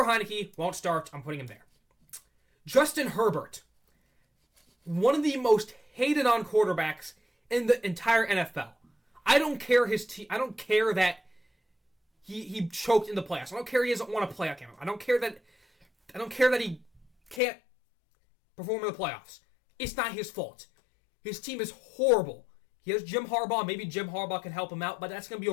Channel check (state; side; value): drops out; right; at 17.4 s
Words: Heineke won't start. I'm putting him there. Justin Herbert, one of the most hated on quarterbacks in the entire NFL. I don't care his team. I don't care that he choked in the playoffs. I don't care he doesn't want to play again. I don't care that he can't perform in the playoffs. It's not his fault. His team is horrible. He has Jim Harbaugh. Maybe Jim Harbaugh can help him out, but that's going to be